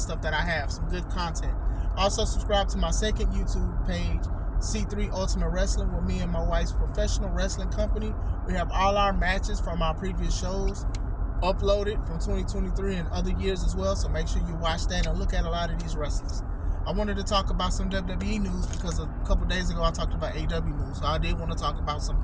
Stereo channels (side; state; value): both; identical; correlation 1.00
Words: that I have, some good content. Also subscribe to my second YouTube page, C3 Ultimate Wrestling, with me and my wife's professional wrestling company. We have all our matches from our previous shows uploaded from 2023 and other years as well. So make sure you watch that and look at a lot of these wrestlers. I wanted to talk about some WWE news because a couple days ago I talked about AEW news. So I did want to talk about some